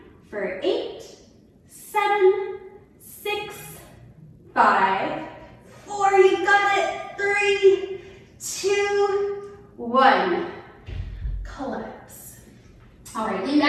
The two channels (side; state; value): both; identical; correlation 1.00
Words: for 8, 7, 6, 5, 4, you got it. 3, 2, 1. Collapse. All right, lean